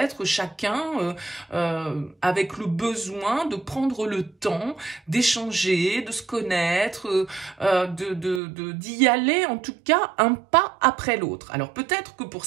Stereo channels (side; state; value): left; drops out; at 8.4 s